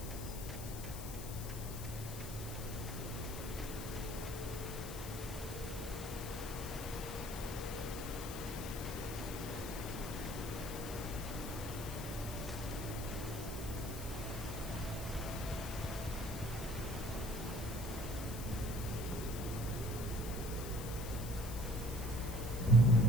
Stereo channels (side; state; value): left; noise; hiss, 10 dB below the sound